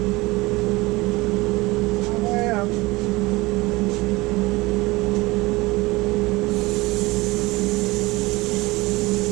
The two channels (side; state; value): left; quieter; 21.8 dB